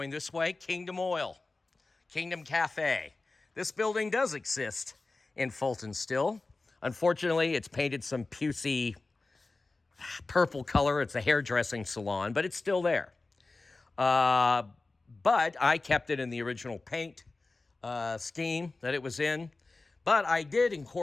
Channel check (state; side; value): quieter; right; 3.5 dB